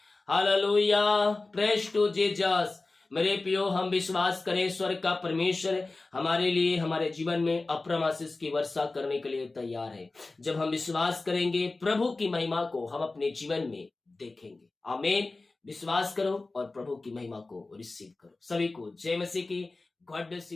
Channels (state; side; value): quieter; right; 3.4 dB